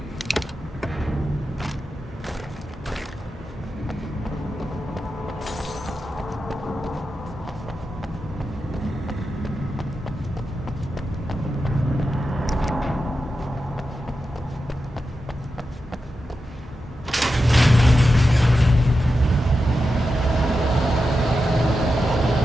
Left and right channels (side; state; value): both; normal; correlation 0.90